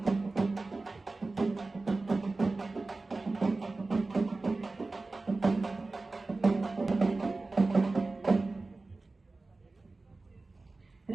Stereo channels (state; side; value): quieter; left; 3.4 dB